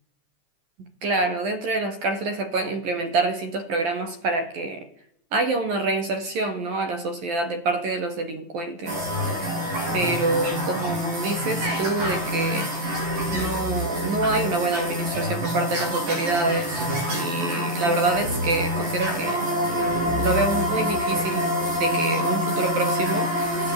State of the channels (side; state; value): left; late; 12 ms